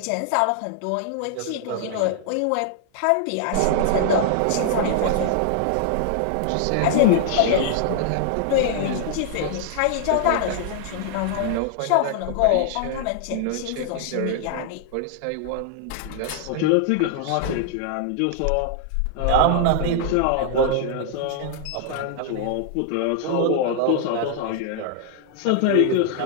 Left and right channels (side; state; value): both; different; correlation -0.01